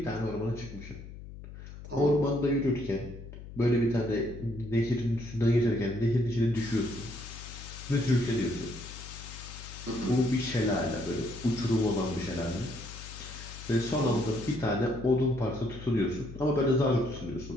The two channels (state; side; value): noise; left; hum, 13 dB below the sound